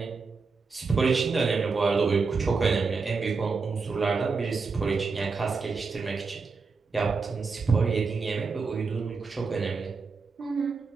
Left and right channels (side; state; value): left; quieter; 4.6 dB